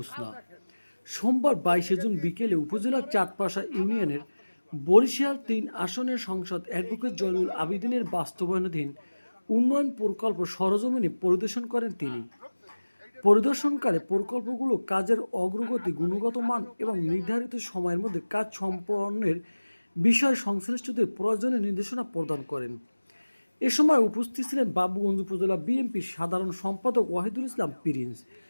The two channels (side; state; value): both; inverted; correlation -1.00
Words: সোমবার 22 জুন বিকেলে উপজেলার চাঁদপাশা ইউনিয়নের বরিশাল ৩ আসনের সংসদ অ্যাডভোকেট জয়নুল আবেদিনের বাস্তবায়নাধীন উন্নয়ন প্রকল্প সরজমিনে পরিদর্শন করেন তিনি। পরিদর্শনকালে প্রকল্পগুলো কাজের অগ্রগতি, গুণগত মান এবং নির্ধারিত সময়ের মধ্যে কাজ সম্পন্নের বিষয়ে সংশ্লিষ্টদের প্রয়োজনীয় নির্দেশনা প্রদান করেন। এ সময় উপস্থিত ছিলেন বাবুগঞ্জ উপজেলা বিএনপির সাধারণ সম্পাদক ওয়াহিদুল ইসলাম প্রিন্স,